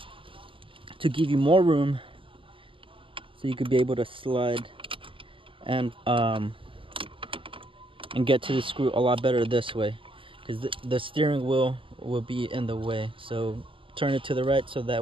to give you more room, so you could be able to slide and get to the screw a lot better this way, because the steering wheel will be in the way. So turn it to the right so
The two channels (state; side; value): late; left; 0.25 ms